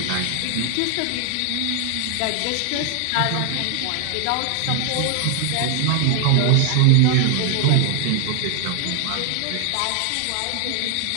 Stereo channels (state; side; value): different; both; correlation 0.00